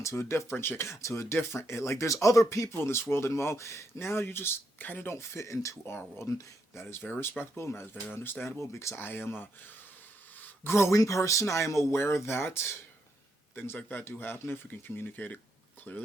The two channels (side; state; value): both; normal; correlation 0.79